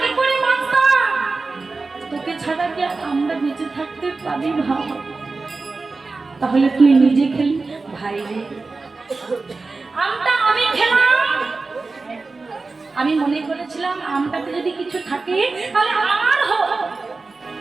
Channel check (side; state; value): left; quieter; 3.8 dB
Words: কি করে বাঁচতাম? তোকে ছাড়া কি আমরা বেঁচে থাকতে পারি ভাব? তাহলে তুই নিজে খেলি ভাই রে, আমটা আমি খেলাম। আমি মনে করেছিলাম আমটাতে যদি কিছু থাকে তাহলে আমার হোক,